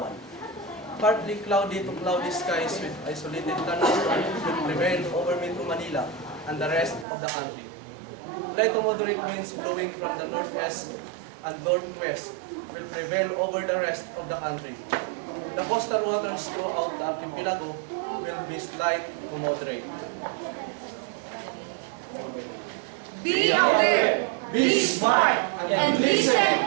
Partly cloudy to cloudy skies with isolated thunderstorm will prevail over Metro Manila and the rest of the country. Light to moderate winds blowing from the northwest and northwest will prevail over the rest of the country. The coastal waters throughout the archipelago will be slight to moderate. Be aware, be smart, and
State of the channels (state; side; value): drops out; left; at 7.1 s